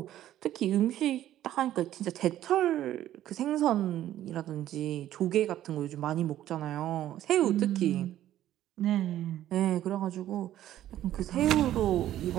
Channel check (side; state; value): left; quieter; 12.7 dB